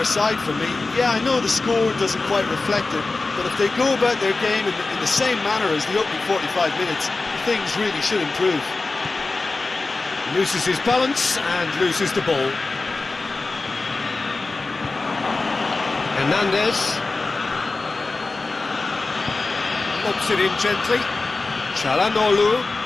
side for me. Yeah, I know the score doesn't quite reflect it, but if they go about their game in the same manner as the opening 45 minutes, things really should improve. Loses his balance and loses the ball. Hernandez. Lobs it in gently. Çalhanoğlu.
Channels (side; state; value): right; quieter; 3.5 dB